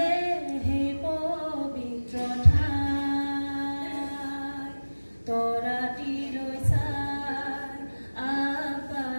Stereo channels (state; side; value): inverted; both; correlation -1.00